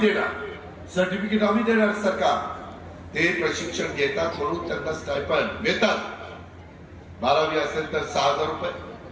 सर्टिफिकेट आम्ही देणार. सरकार ते प्रशिक्षण घेतात म्हणून त्यांना स्टायपंड मिळतात. 12वी असेल तर 6,000 रुपये,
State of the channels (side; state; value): both; identical; correlation 1.00